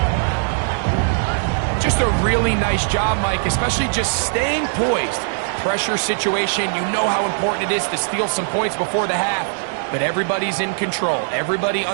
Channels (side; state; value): left; silent; digital silence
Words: Just a really nice job, Mike, especially just staying poised. Pressure situation, you know how important it is to steal some points before the half, but everybody's in control. Everybody